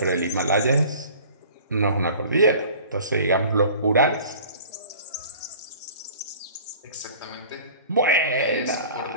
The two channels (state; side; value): inverted; both; correlation -0.46